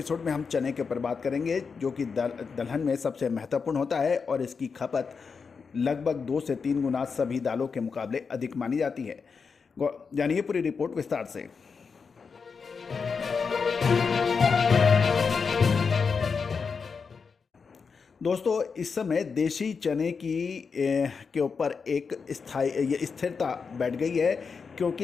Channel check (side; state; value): right; quieter; 5.4 dB